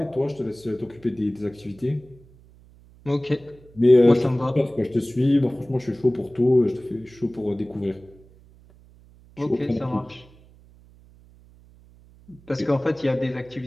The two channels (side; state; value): right; noise; hum, 26 dB below the sound